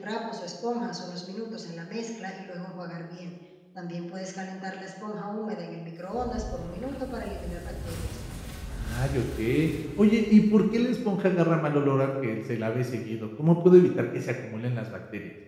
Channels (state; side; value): identical; both; correlation 1.00